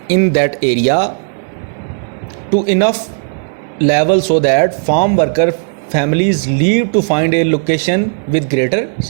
in that area to enough level so that farm worker families leave to find a location with greater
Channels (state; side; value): silent; left; digital silence